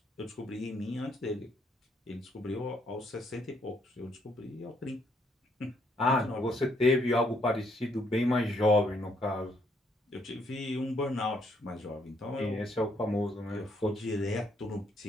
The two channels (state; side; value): normal; both; correlation 0.70